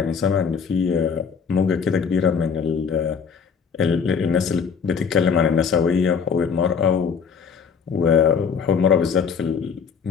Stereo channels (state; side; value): quieter; right; 6.3 dB